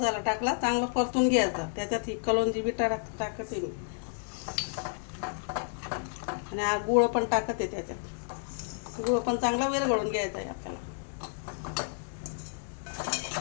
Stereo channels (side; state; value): right; silent; digital silence